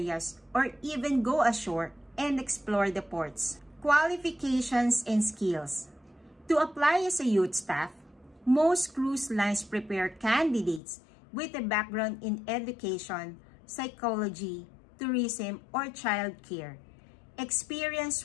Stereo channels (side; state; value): right; drops out; at 10.8 s